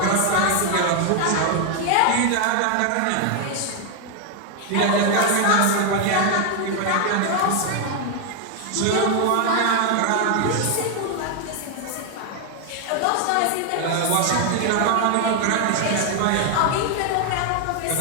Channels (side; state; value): both; different; correlation 0.00